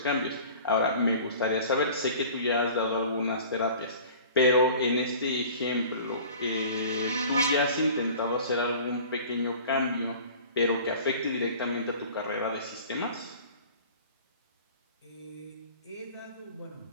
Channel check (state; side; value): inverted; both; correlation -0.44